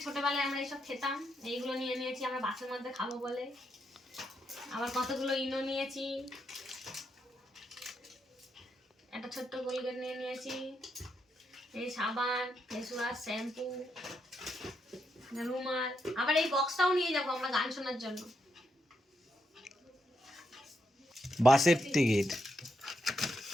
ছোটবেলায় আমরা এইসব খেতাম, এইগুলো নিয়ে নিয়েছি আমরা বাসের মধ্যে খাবো বলে। আবার কতগুলো ইনো নিয়েছি, একটা ছোট্ট কোলগেট নিয়ে নিয়েছি, এই সাবান, ফেস ওয়াশ, শ্যাম্পু, রুমাল। আবার এই বক্সটাও নিয়ে যাবো আমরা গান শোনার জন্য। বাসের টিকিট,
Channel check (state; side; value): normal; both; correlation 0.81